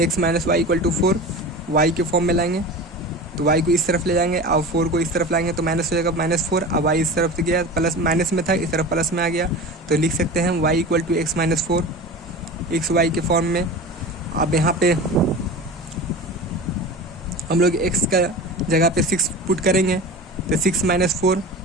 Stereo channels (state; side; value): normal; both; correlation 0.33